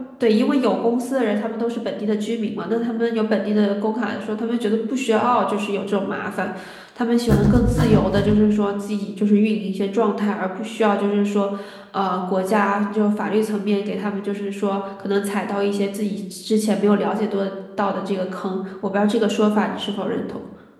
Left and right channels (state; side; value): identical; both; correlation 1.00